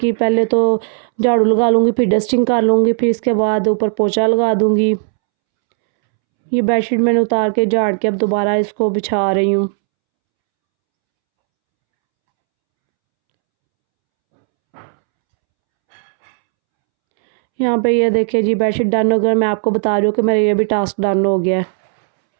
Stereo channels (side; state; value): left; silent; 70 dB below the other